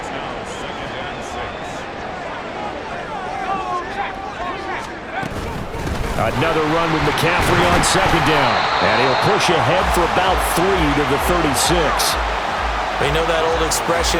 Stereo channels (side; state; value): both; identical; correlation 1.00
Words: Another run with McCaffrey on second down. And he'll push ahead for about 3 to the 36. You know that old